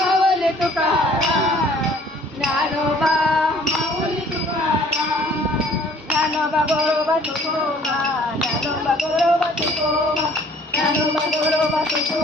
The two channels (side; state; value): both; normal; correlation 0.55